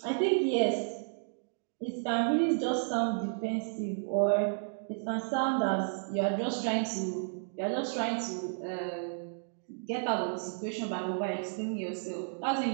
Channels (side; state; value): left; silent; digital silence